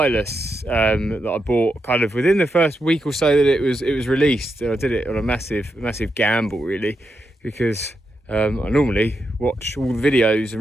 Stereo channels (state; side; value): normal; both; correlation 0.84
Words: that I bought kind of within the first week or so that it was released. I did it on a massive gamble really, because I normally watch all the videos and